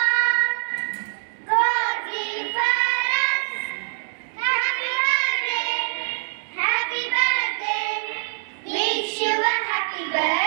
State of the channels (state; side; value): silent; left; 63 dB below the other